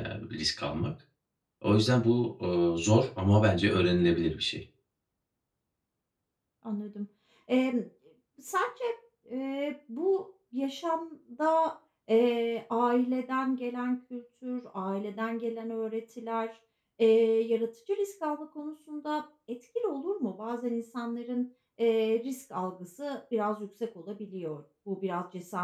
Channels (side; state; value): both; identical; correlation 1.00